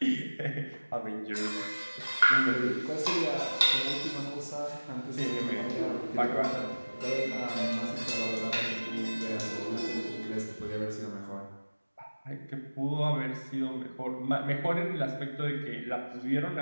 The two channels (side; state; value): both; inverted; correlation -1.00